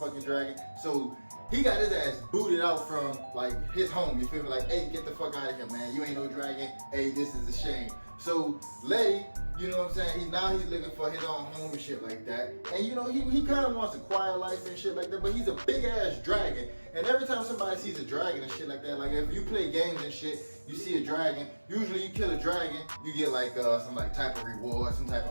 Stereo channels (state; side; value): inverted; both; correlation -1.00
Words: dragon. So, he got his ass booted out from, like, his home, you feel me? Like, hey, get the fuck out of here, man. You ain't no dragon. Hey, this is a shame. So, Letty, you know what I'm saying? He's looking for his own home and shit like that. And, you know, he kind of wants a quiet life and shit like that, but he's a big-ass dragon. And every time somebody sees a dragon and shit like that, like, if you play games and shit, you see a dragon, usually you kill a dragon, you get, like, some, like, type of reward, some type